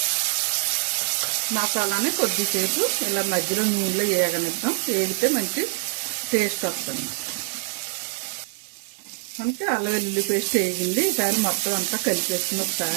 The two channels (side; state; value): left; silent; 62 dB below the other